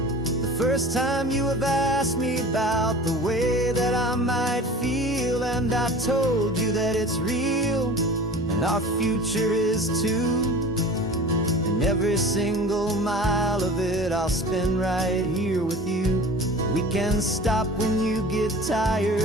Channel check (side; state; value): both; normal; correlation 0.39